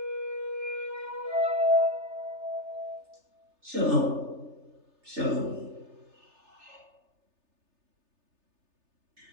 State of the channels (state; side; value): late; left; 3.3 ms